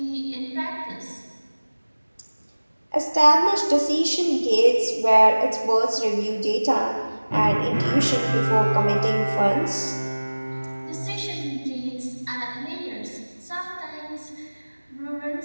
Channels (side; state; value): both; inverted; correlation -1.00